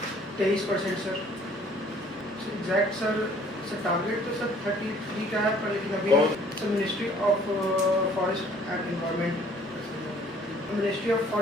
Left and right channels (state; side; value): normal; both; correlation 0.57